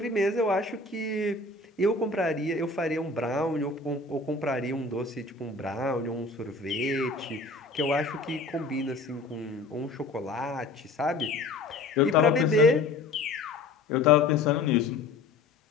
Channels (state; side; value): quieter; right; 3.4 dB